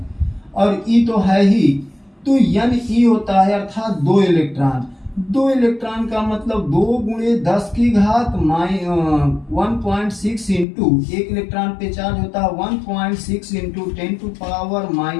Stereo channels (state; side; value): drops out; right; at 10.7 s